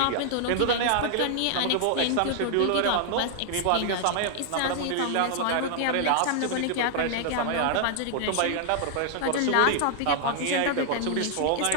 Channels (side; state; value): both; different; correlation 0.00